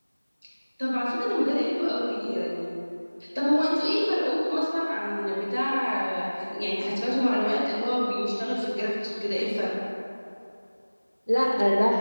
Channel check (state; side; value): inverted; both; correlation -1.00